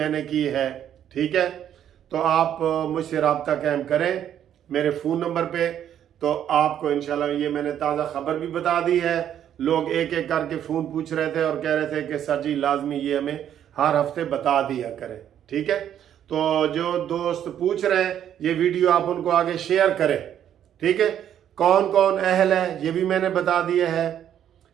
की है। ठीक है, तो आप मुझसे रब्ता कायम करें मेरे फ़ोन नंबर पे, तो आपको इंशाल्लाह ये मैंने ताज़ा खबर भी बता दी है। लोग एक एक करके फ़ोन पूछ रहे थे और कह रहे थे कि सर जी लाजमी ये हमें हर हफ्ते बता दिया करें। ठीक है, तो जो दोस्त पूछ रहे हैं, ये वीडियो आप उनको आगे शेयर करें। ठीक है, कौन कौन अहल है ये भी मैंने बता दिया है,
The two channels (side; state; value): left; quieter; 10.1 dB